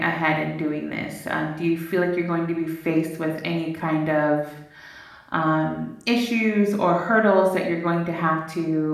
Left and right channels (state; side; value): identical; both; correlation 1.00